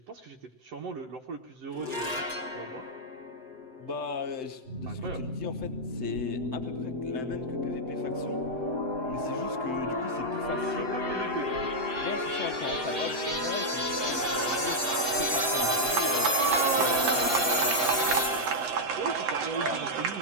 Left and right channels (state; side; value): late; left; 7.8 ms